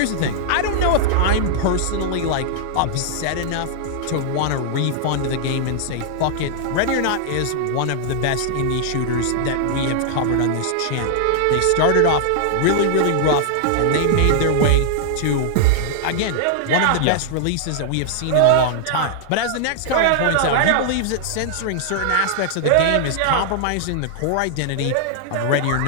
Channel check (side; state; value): both; different; correlation -0.01